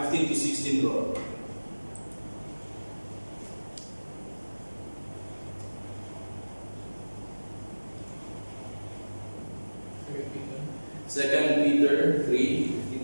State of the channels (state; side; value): inverted; both; correlation -1.00